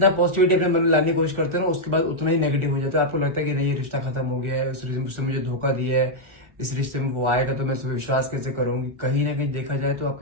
पॉजिटिविटी अपने मन में लाने की कोशिश करते हो ना, उसके बाद उतना ही नेगेटिव हो जाता है। आपको लगता है कि नहीं, ये रिश्ता खत्म हो गया है, उस रिश्ते मुझे धोखा दिया है, इस रिश्ते में वो आएगा तो मैं उस पर विश्वास कैसे करूंगी। कहीं ना कहीं देखा जाए तो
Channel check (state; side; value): late; left; 1.4 ms